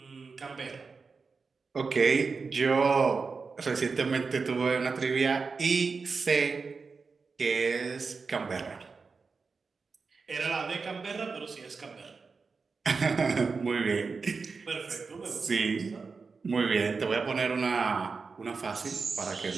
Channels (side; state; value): left; quieter; 4.7 dB